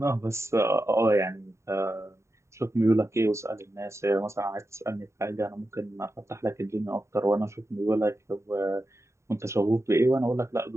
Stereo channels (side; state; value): left; late; 0.14 ms